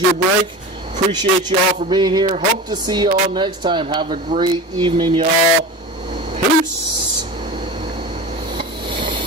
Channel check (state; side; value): normal; both; correlation 0.31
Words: your break. Appreciate you all for being here. Hope to see you all next time. Have a great evening, y'all. Peace.